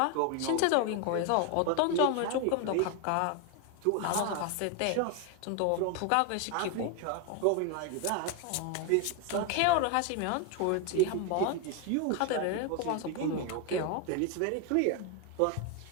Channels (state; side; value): different; both; correlation 0.01